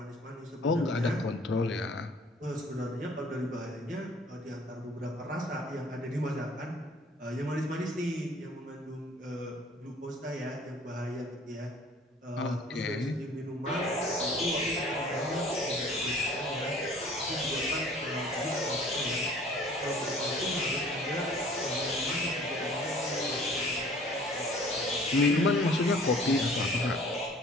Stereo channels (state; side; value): normal; both; correlation 0.51